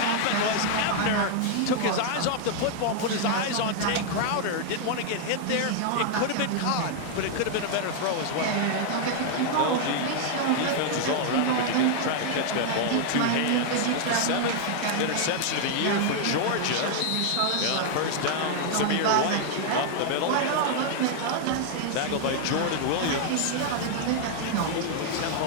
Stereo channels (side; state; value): both; different; correlation 0.00